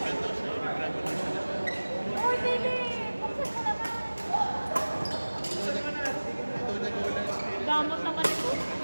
Uy, Philip! Buksan mo naman! Damot naman ito.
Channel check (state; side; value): inverted; both; correlation -1.00